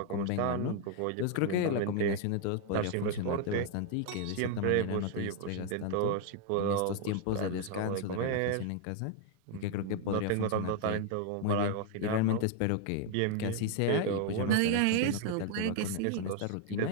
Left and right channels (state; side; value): different; both; correlation 0.00